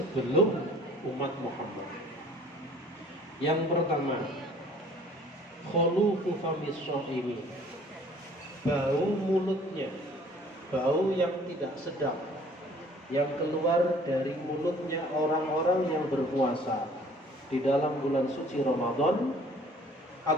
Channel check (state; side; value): normal; both; correlation 0.54